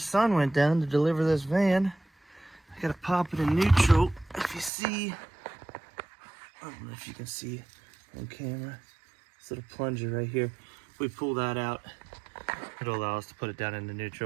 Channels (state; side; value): drops out; left; at 4.7 s